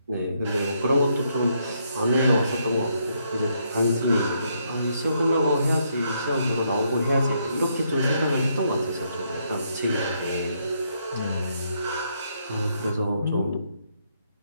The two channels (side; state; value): both; inverted; correlation -0.75